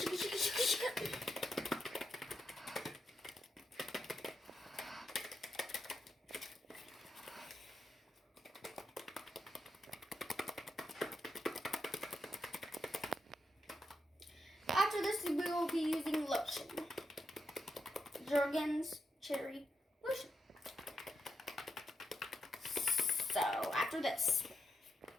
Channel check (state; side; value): normal; both; correlation 0.84